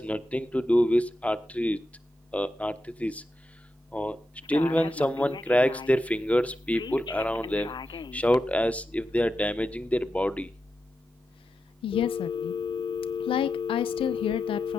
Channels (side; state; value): both; normal; correlation 0.88